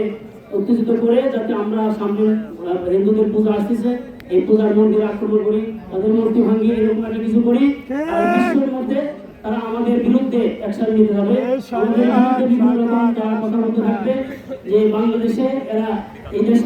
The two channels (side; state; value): both; identical; correlation 1.00